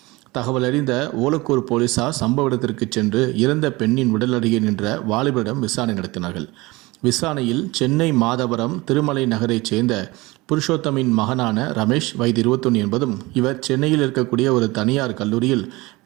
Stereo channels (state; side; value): quieter; left; 22.1 dB